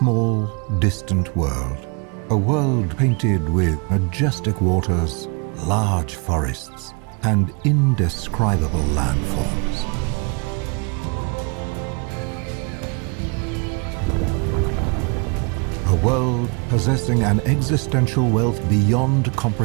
distant world. A world painted with majestic waters, large forests, and indescribable landforms. A world possessing an existential wealth beyond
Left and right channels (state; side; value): quieter; left; 32.8 dB